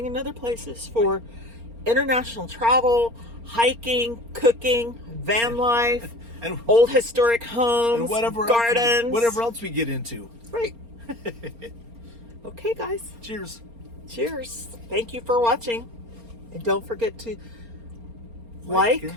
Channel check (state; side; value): late; left; 4.3 ms